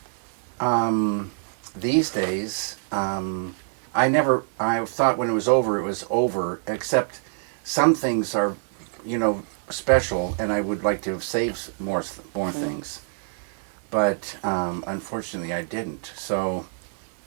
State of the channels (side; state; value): left; silent; digital silence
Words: These days, I thought when it was over, except some things are, special, and I would like to have saved more things. But unfortunately I didn't. So,